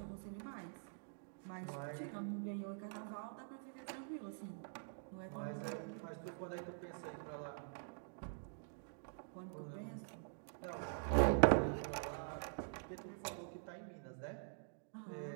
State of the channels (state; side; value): silent; left; digital silence